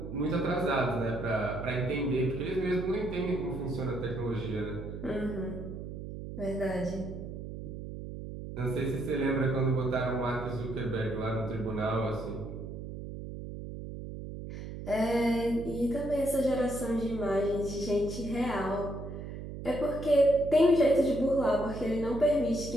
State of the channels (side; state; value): right; noise; hum, 9 dB below the sound